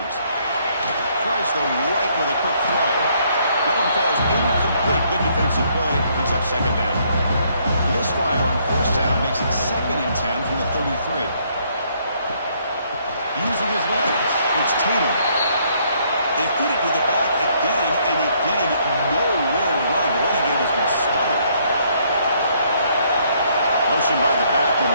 Tries the right with a quick throw. That one falls incomplete. Good defensive play. Brings up 2nd down. The misfire on 1st down makes it 2nd and 10 from the 33. Using his legs, it's Tatum. They feed it to the back again and again. Nowhere to run. The running game has been smothered. Motion by the back will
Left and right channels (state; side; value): inverted; both; correlation -0.68